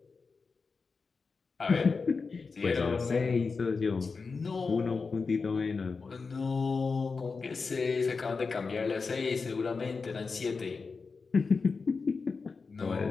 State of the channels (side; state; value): right; quieter; 4.7 dB